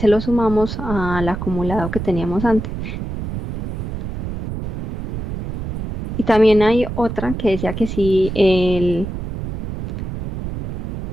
lo sumamos al acumulado que teníamos antes. Y también hay otra que decía que si el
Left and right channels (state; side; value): noise; right; rumble, 5 dB below the sound